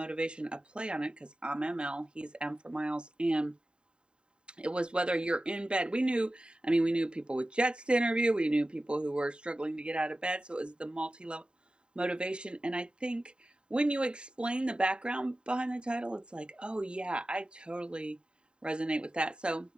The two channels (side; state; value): left; late; 0.050 ms